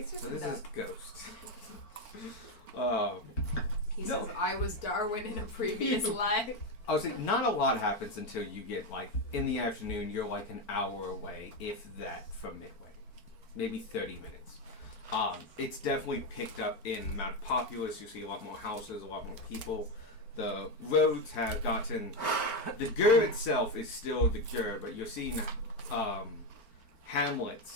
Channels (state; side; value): late; right; 4.5 ms